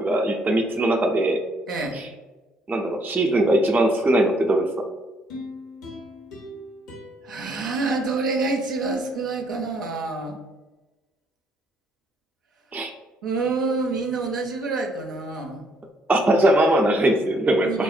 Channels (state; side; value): normal; both; correlation 0.69